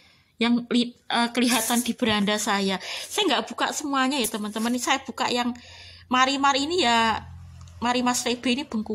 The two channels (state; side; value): identical; both; correlation 1.00